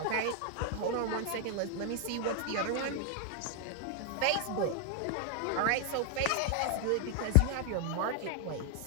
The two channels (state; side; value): different; both; correlation 0.00